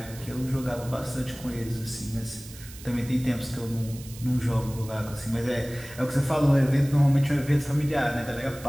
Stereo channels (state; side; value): noise; right; hiss, 17 dB below the sound